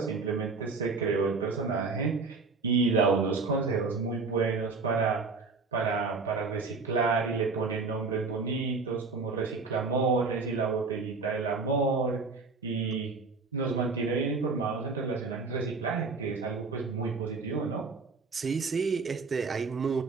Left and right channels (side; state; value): left; quieter; 4.3 dB